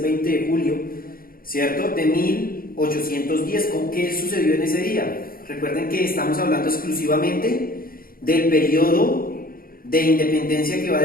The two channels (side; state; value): right; late; 0.42 ms